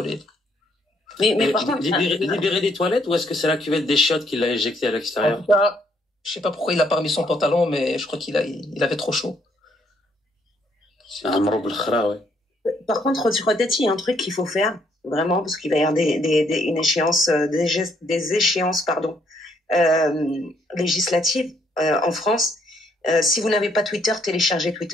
Mais par contre, libérer des toilettes ou est-ce que c'est la cuvette des chiottes qui l'a éjecté à l'extérieur? En tout cas, je sais pas pourquoi il a pas remis son pantalon, mais je crois qu'il avait trop chaud. C'est un mroub l'khra, ouais. Par contre, peut-être il y a un truc qu'il faut faire, vraiment, parce qu'il va y avoir une échéance, des échéances, législatives en France. Si vous n'avez pas Twitter, téléchargez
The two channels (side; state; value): both; normal; correlation 0.70